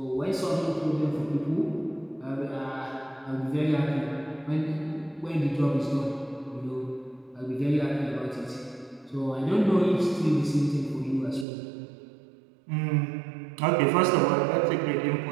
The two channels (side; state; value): left; drops out; at 11.5 s